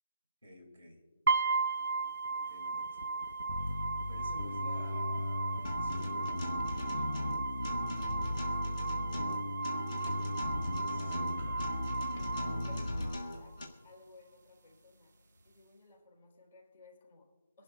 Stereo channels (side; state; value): both; inverted; correlation -0.74